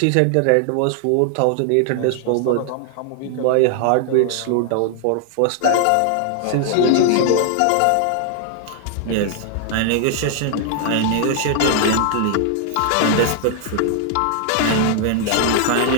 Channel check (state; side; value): different; both; correlation -0.01